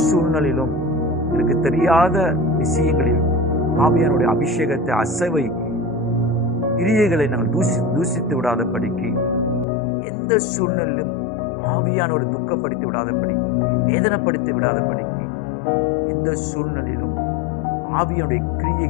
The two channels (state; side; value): drops out; right; at 9.7 s